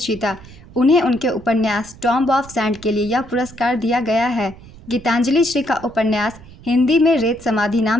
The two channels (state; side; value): noise; right; rumble, 20 dB below the sound